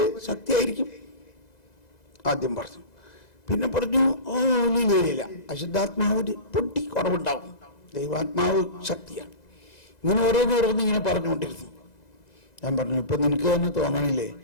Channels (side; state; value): right; late; 2.0 ms